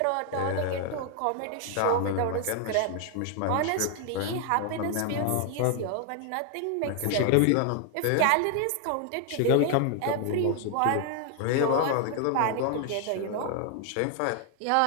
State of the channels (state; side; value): different; both; correlation 0.00